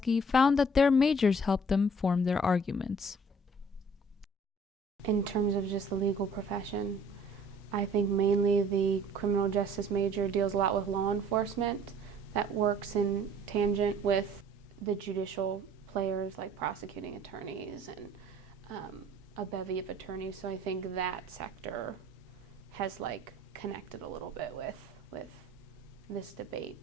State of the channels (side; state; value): both; normal; correlation 0.55